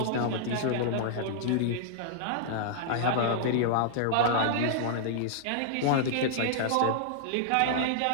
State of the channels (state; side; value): different; both; correlation -0.01